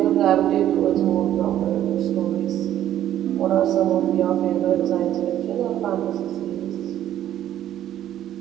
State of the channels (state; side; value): quieter; left; 11.8 dB